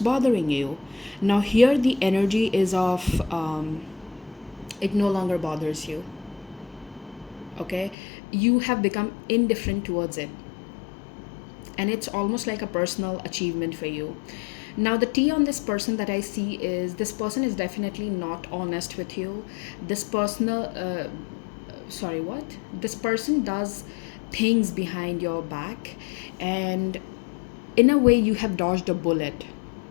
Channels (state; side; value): drops out; right; at 8.0 s